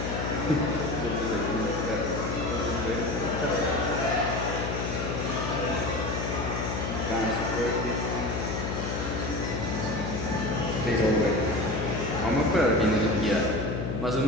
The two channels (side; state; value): left; noise; hum, 3 dB below the sound